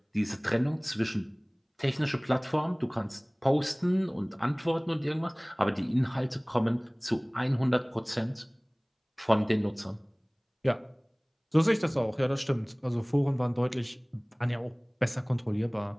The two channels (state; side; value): identical; both; correlation 1.00